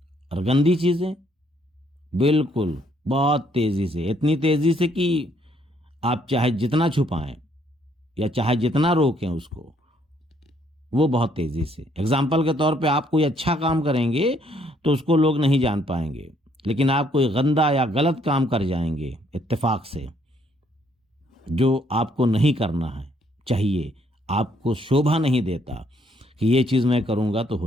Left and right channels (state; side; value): normal; both; correlation 0.68